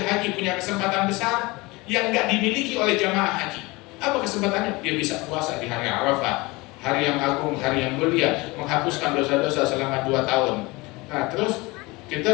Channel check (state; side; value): quieter; right; 23.4 dB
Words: haji punya kesempatan besar yang nggak dimiliki oleh jamaah haji. Apa kesempatannya? Dia bisa puasa di hari Arafah, hari yang agung, hari yang mulia, menghapuskan dosa-dosa selama 2 tahun. Nah terus